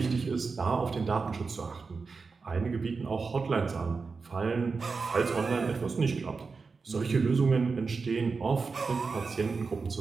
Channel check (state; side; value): quieter; left; 4.6 dB